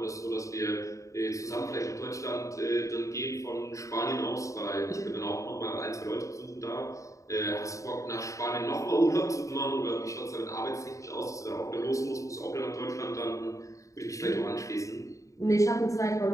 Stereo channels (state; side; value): late; right; 0.15 ms